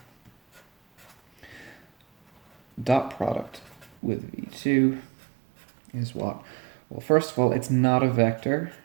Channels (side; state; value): left; drops out; at 4.0 s